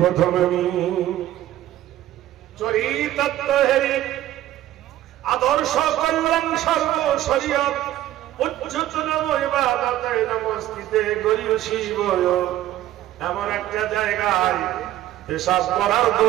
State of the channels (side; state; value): left; quieter; 13.7 dB